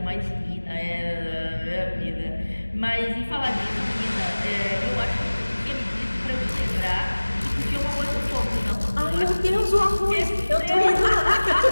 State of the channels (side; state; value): both; inverted; correlation -1.00